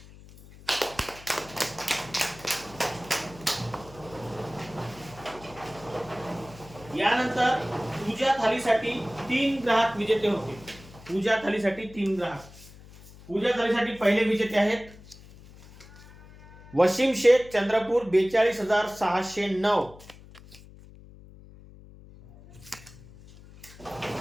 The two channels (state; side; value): noise; left; hum, 20 dB below the sound